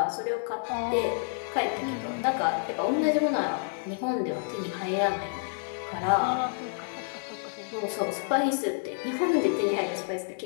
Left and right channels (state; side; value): silent; right; 59 dB below the other